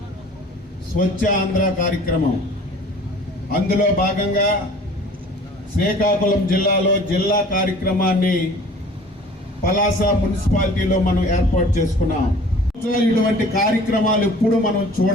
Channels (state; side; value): normal; both; correlation 0.48